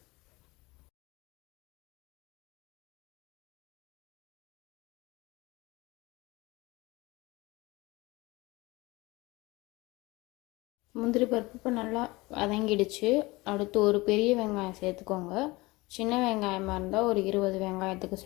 முந்திரி பருப்பு இப்போ நல்லா வதங்கிடுச்சு. அடுத்து ஒரு பெரிய வெங்காயம் சேர்த்துக்கோங்க. சின்ன வெங்காயமாக இருந்தால் ஒரு 20 வெங்காயத்துக்கு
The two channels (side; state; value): right; quieter; 22.1 dB